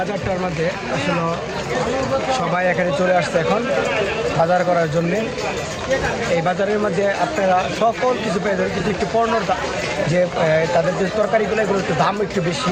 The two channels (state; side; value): identical; both; correlation 1.00